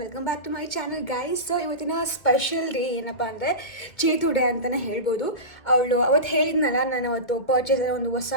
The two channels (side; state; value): right; late; 2.0 ms